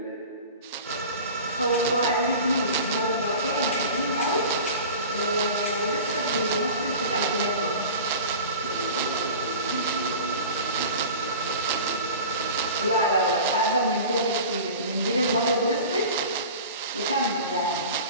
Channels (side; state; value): both; inverted; correlation -0.37